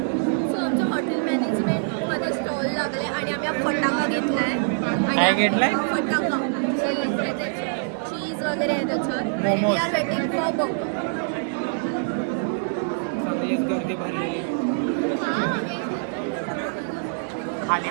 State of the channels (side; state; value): left; silent; 62 dB below the other